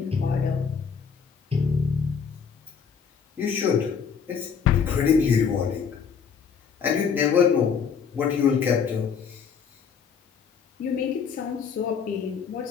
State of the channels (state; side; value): quieter; right; 6.5 dB